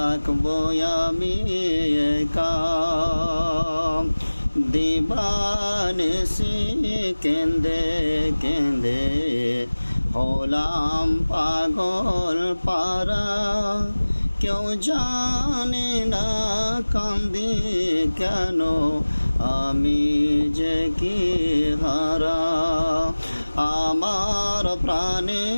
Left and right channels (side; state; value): both; inverted; correlation -1.00